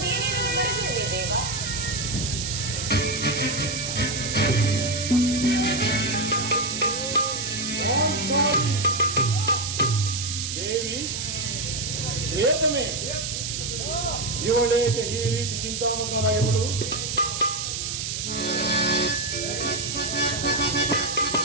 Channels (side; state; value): right; noise; hiss, 3 dB below the sound